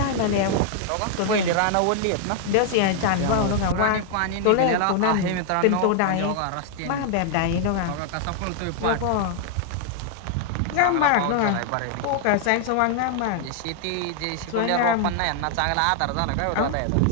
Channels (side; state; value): both; different; correlation 0.00